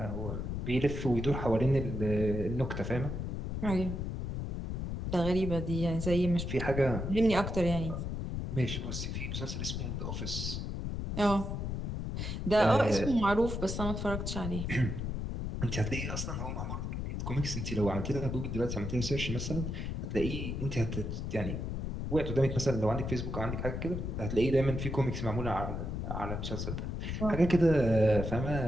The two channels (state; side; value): noise; left; rumble, 3 dB below the sound